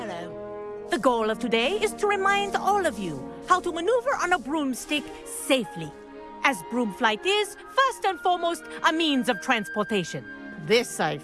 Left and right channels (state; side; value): identical; both; correlation 1.00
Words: The goal of today is to remind all of you how to maneuver on a broomstick safely, as broom flight is, first and foremost, a means of transportation. This, I